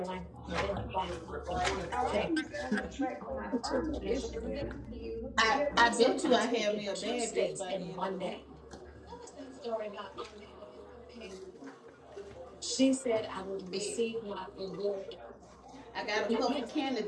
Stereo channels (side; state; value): both; identical; correlation 1.00